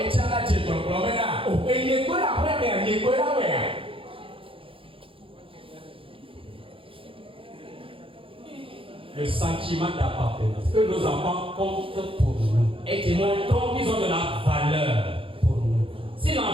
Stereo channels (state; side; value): late; left; 0.26 ms